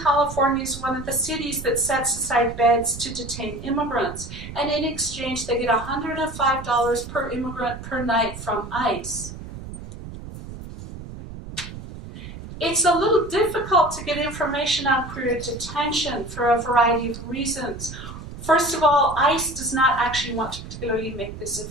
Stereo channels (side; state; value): right; noise; rumble, 12 dB below the sound